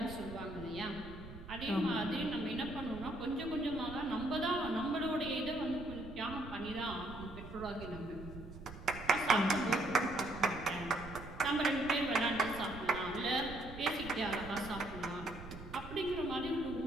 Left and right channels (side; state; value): right; noise; rumble, 13 dB below the sound